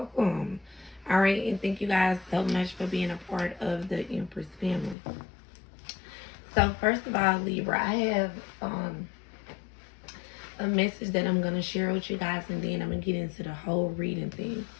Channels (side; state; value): right; drops out; at 5.0 s